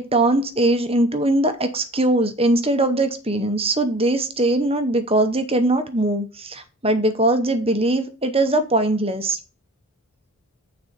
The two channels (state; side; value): normal; both; correlation 0.43